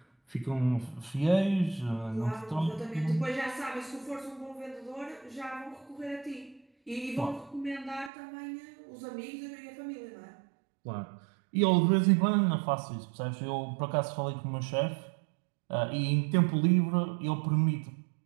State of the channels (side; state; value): left; drops out; at 8.1 s